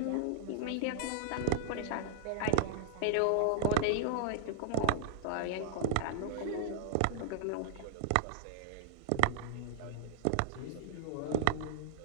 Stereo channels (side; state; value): both; different; correlation 0.00